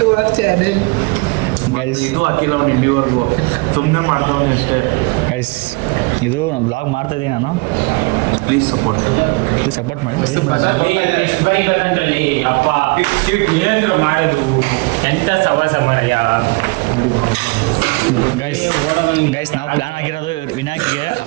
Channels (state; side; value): quieter; left; 28.2 dB